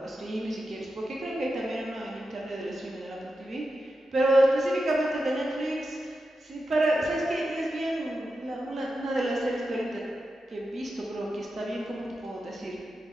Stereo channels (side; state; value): both; normal; correlation 0.90